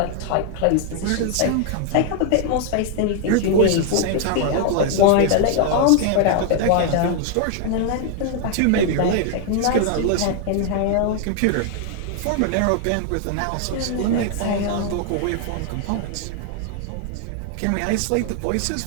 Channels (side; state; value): both; different; correlation 0.00